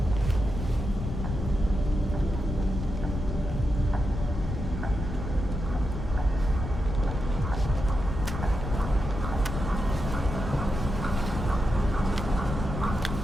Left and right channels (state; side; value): noise; left; rumble, 5 dB below the sound